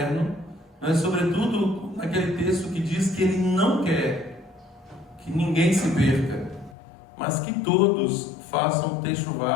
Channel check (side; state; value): right; drops out; at 6.8 s